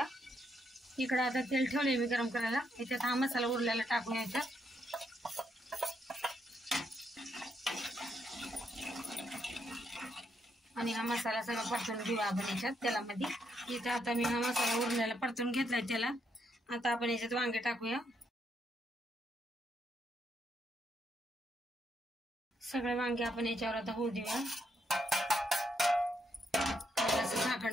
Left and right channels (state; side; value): normal; both; correlation 0.77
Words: इकडे आता तेल ठेवले मी गरम करायला, याच्यात हा मसाला उरलेला टाकूया याच्यात। आणि हा मसाला सगळा परतून घेऊया आपण याच्यात तेलामध्ये। इथे आता मी हा मसाला उरलेला परतून घेतलाय तेलात। आता आपण याच्यात वांगे टाकूया। सगळे वांगे आपण याच्यावर आता होऊ देऊया, असं